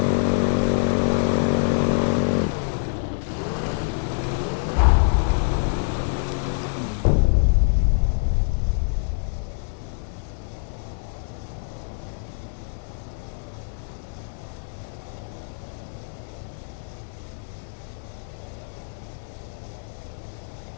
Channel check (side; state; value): right; silent; digital silence